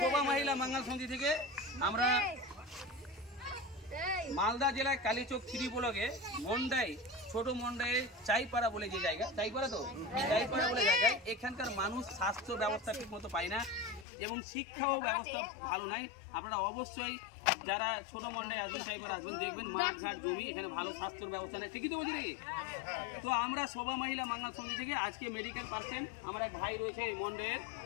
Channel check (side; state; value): right; drops out; at 14.1 s